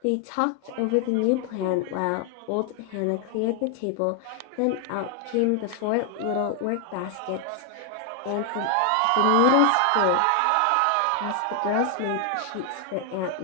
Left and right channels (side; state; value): both; different; correlation 0.00